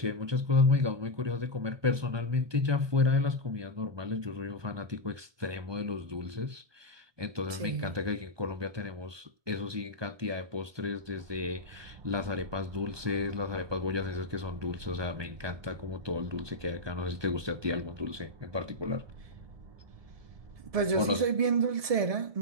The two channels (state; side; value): late; left; 1.2 ms